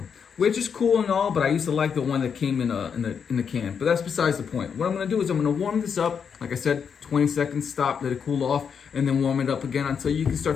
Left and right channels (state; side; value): quieter; right; 6.8 dB